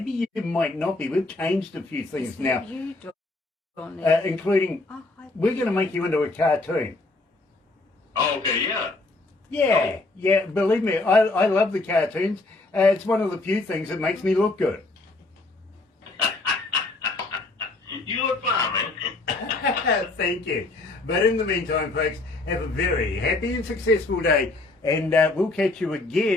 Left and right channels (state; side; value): quieter; right; 3.1 dB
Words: you might not be. We've changed a few things now, including we're going to make you into a cartoon. Oh, okay, yeah. Yeah, believe me, I love the cartoons. It's one of the few things that makes me look good. You look fine, man. Thank you. But in the meantime, folks, have a very happy and successful day. And we'll catch you